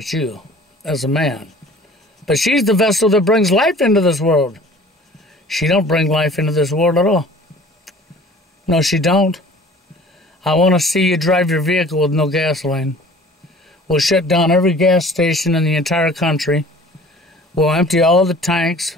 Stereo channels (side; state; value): both; normal; correlation 0.48